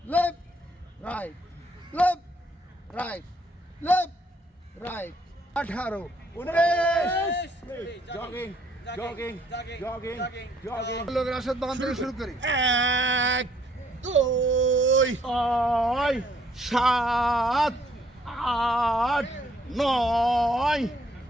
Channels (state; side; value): normal; both; correlation 0.66